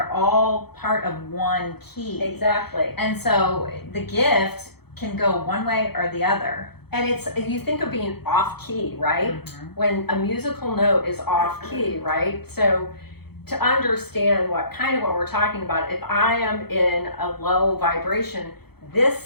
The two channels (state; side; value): late; right; 0.96 ms